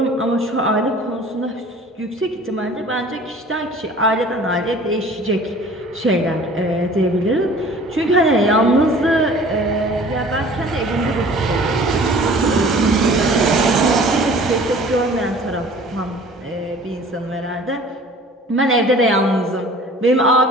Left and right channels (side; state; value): both; normal; correlation 0.47